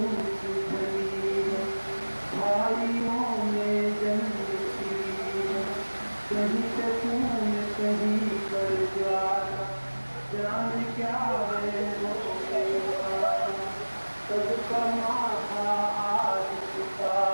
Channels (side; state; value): both; inverted; correlation -1.00